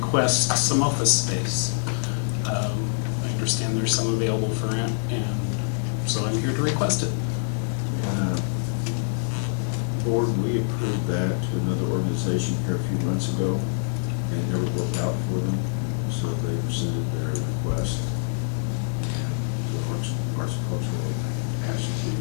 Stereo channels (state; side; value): silent; right; 58 dB below the other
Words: some office space. I understand there's some available for rent, and so I'm here to request it. Board, we approved that to another organization here a few months ago, and it never worked out for them, so they rescinded their request. The Arts and Cultural asked